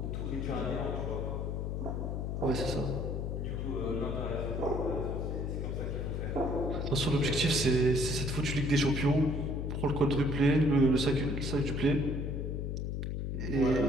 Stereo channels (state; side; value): noise; left; hum, 2 dB below the sound